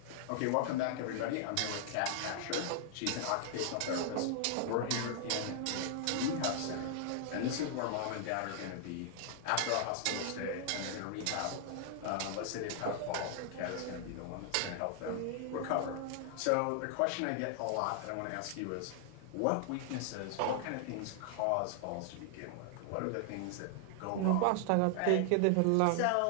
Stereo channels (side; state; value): both; different; correlation 0.00